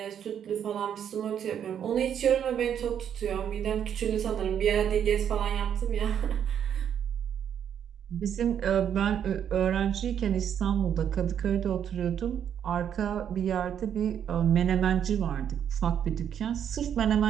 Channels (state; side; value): quieter; left; 8.9 dB